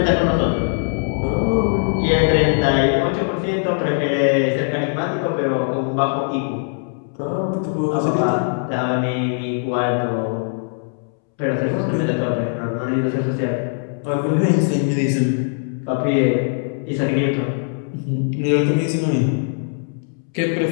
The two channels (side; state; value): right; silent; 65 dB below the other